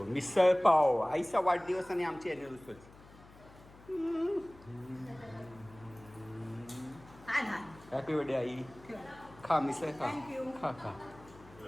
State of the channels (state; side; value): noise; left; hum, 22 dB below the sound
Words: मिसळ पाव आईचा वाढदिवस आणि आमची अॅनिव्हर्सरी. हॅपी बर्थडे आई. खा मिसळ खा खा खा.